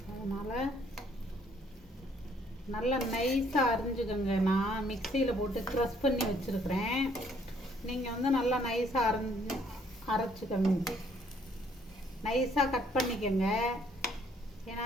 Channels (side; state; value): both; normal; correlation 0.64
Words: அதனால் நல்லா நைஸாக அரிஞ்சுக்கோங்க. நான் மிக்சியில் போட்டு க்ரஷ் பண்ணி வச்சுருக்கிறேன். நீங்கள் வந்து நல்லா நைஸாக அரைச்சிக்கோங்க. நைஸாக கட் பண்ணிக்கோங்க.